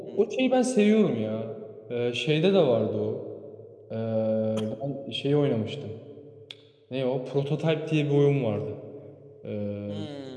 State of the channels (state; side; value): identical; both; correlation 1.00